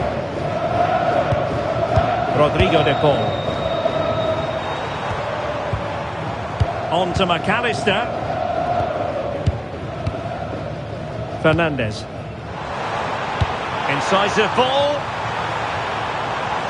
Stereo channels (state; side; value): identical; both; correlation 1.00